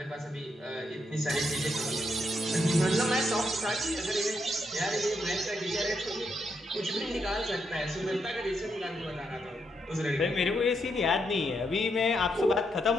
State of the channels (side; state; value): both; normal; correlation 0.79